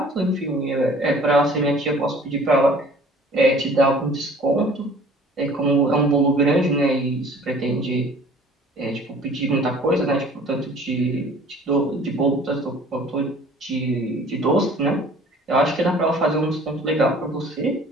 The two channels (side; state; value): both; normal; correlation 0.50